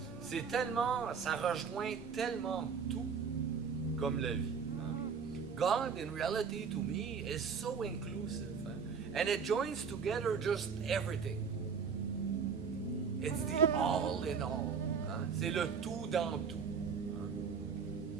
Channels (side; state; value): left; quieter; 6.1 dB